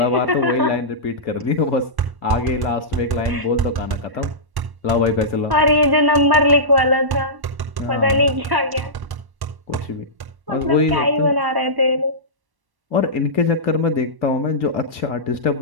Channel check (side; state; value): left; late; 1.1 ms